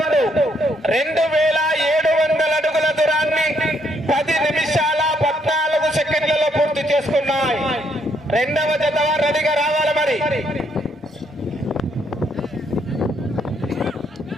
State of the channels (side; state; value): both; normal; correlation 0.72